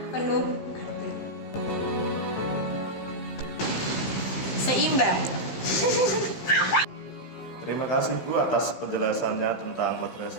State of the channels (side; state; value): right; late; 16 ms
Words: penuh arti. Seimbang. Terima kasih Bu atas penjelasannya tentang